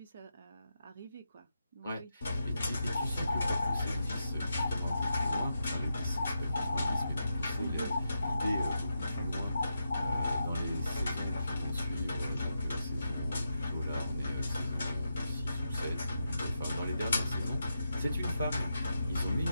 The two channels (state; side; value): inverted; both; correlation -0.87